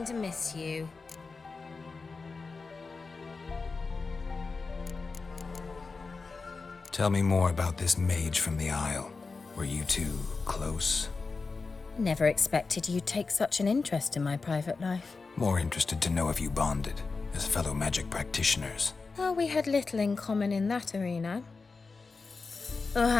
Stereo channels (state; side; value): quieter; right; 4.3 dB